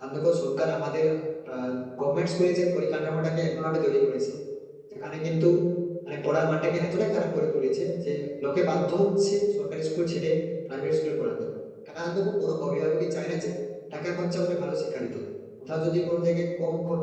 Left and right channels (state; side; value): identical; both; correlation 1.00